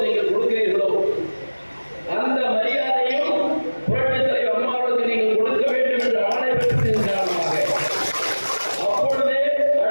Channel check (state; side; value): inverted; both; correlation -1.00